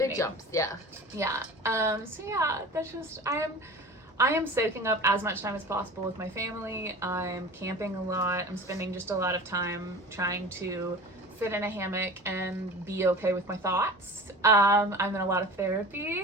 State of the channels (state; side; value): normal; both; correlation 0.37